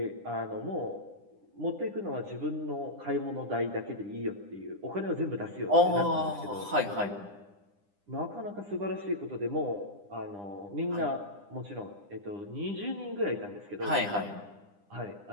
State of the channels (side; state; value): left; late; 9.9 ms